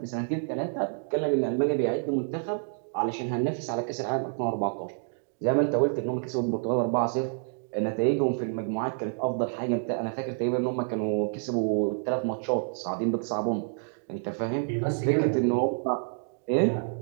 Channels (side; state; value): left; silent; digital silence